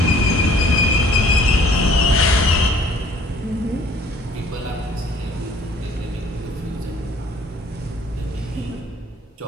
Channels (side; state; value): both; normal; correlation 0.55